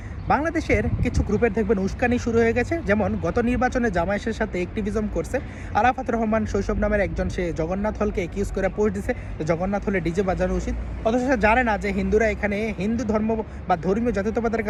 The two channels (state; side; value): identical; both; correlation 1.00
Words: বাংলাদেশের কিছু গ্রুপের দেখবেন উস্কানি শুরু হয়ে গেছে। যেমন গত নির্বাচনে জামায়াতের সাথে অ্যাক্টিভিজম করছে আরাফাত রহমান শৈশব নামের একজন, সে জগন্নাথ হলকে একিউজ করে পোস্ট দিছে জগন্নাথ হলে ডিজে বাজানো উচিত, অথচ সে জানে না যে হিন্দুরা এখানে হিন্দু ধর্ম বা ধর্মীয় জাতীয়তাবাদের